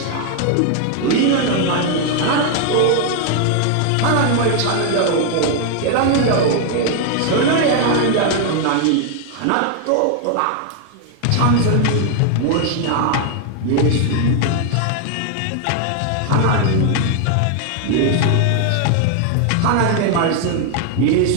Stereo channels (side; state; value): both; different; correlation 0.00